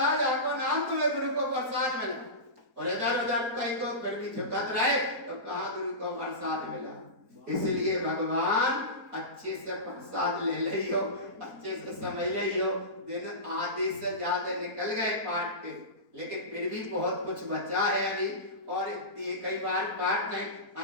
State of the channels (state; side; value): late; left; 4.2 ms